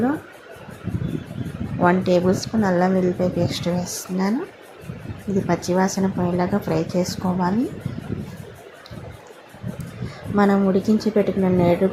1 టేబుల్ స్పూన్ అల్లం వెల్లిపాయ పేస్ట్ వేస్తున్నాను. ఇది పచ్చివాసన పోయేలాగా ఫ్రై చేసుకోవాలి. మనం ఉడికించి పెట్టుకున్న నేడు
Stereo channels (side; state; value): both; identical; correlation 1.00